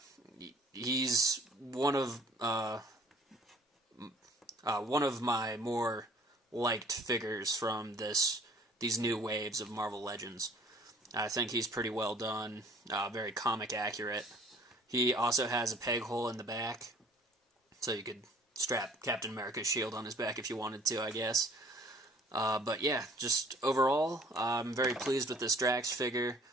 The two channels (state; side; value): normal; both; correlation 0.54